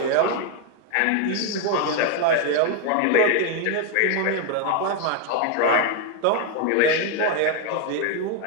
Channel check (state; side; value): different; both; correlation 0.01